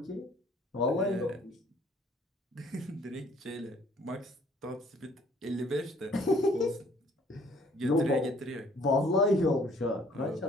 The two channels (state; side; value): normal; both; correlation 0.59